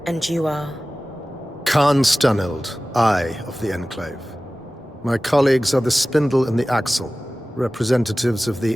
And you are? Khan Stunild, Eye of the Enclave. My colleagues are the Spindle and the Axle, representatives of the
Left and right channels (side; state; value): both; normal; correlation 0.97